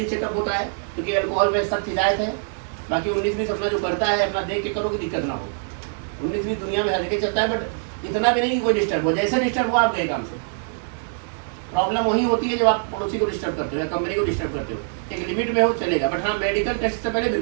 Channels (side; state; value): left; silent; 63 dB below the other